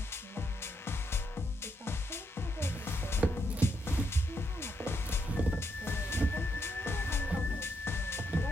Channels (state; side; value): normal; both; correlation 0.79